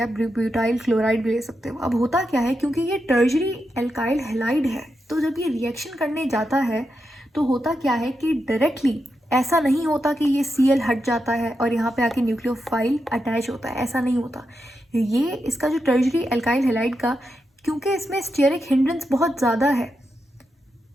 ब्यूटाइल क्लोराइड भी ले सकते हो। अब होता क्या है, क्योंकि ये टर्जरी एल्काइल हैलाइड है, तो जब ये रिएक्शन करने जाता है तो होता क्या है कि डायरेक्टली ऐसा नहीं होता कि ये Cl हट जाता है और यहाँ पे आके न्यूक्लियोफाइल अटैच होता है, ऐसा नहीं होता। ये इसका जो टर्जरी एल्काइल हैलाइड का, क्योंकि इसमें स्टेरिक हिंड्रेंस बहुत ज़्यादा है।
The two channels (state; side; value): normal; both; correlation 0.86